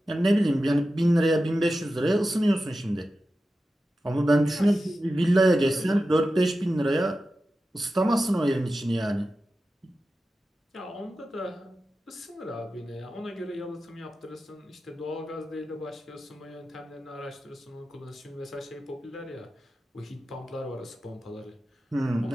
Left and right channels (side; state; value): both; normal; correlation 0.93